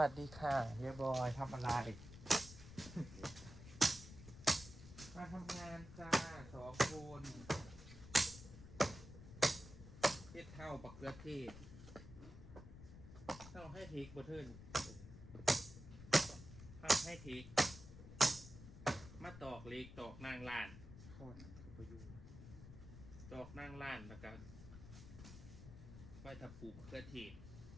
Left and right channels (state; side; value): noise; left; rumble, 14 dB below the sound